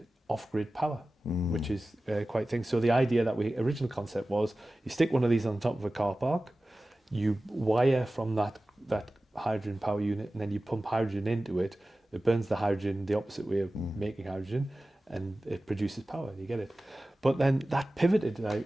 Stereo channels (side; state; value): both; normal; correlation 0.96